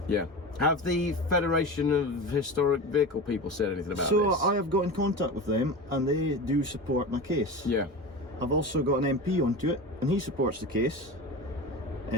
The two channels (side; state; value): both; normal; correlation 0.28